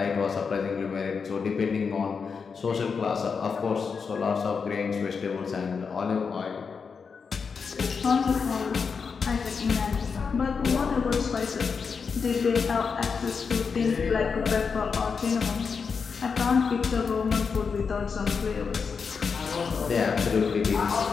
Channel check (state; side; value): quieter; right; 5.6 dB